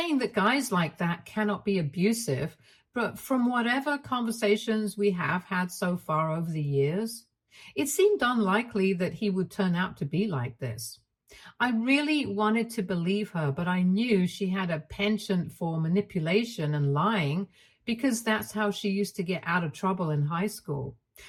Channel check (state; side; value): identical; both; correlation 1.00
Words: that guys like that cannot be abusive, but from whatever conversations we have had so far over the years, it seemed unlikely that he would turn out to be like this. I really wanted to believe her, but I knew she had a penchant for manipulation and lying because that's how she used to get out of trouble in high school.